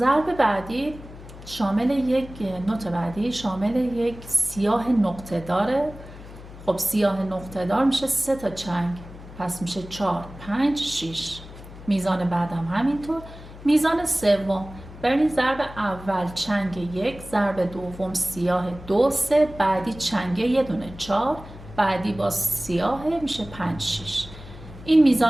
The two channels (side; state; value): left; noise; hum, 16 dB below the sound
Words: بعدی شامل یک نوت بعدی شامل یک سیاه نقطه داره. خب سیاه نقطه دار میشه 3 تا چنگ پس میشه 4 5 6. میزان بعدم همینطور. میزان سوم ببینید، ضرب اول چنگ 1، ضرب دوم سیاه 2 3، بعدی چنگ یه دونه 4، بعدی با سیاه میشه 5 6. این